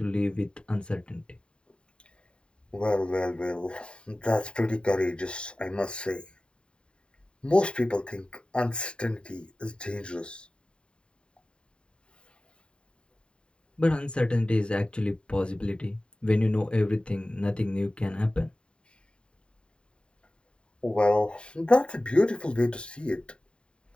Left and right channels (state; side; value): late; right; 0.053 ms